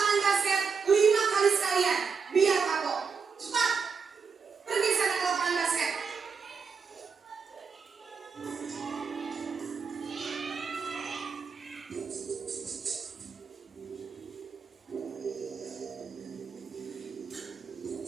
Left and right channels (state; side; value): quieter; left; 5.7 dB